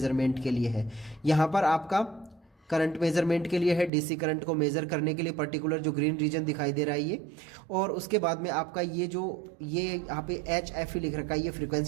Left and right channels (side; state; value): left; drops out; at 3.9 s